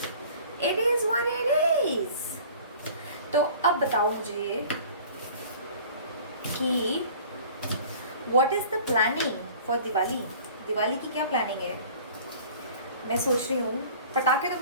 it is what it is. तो अब बताओ मुझे कि what is the planning for Diwali. Diwali की क्या प्लानिंग है? मैं सोच रही हूँ, पटाखे तो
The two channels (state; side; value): inverted; both; correlation -0.46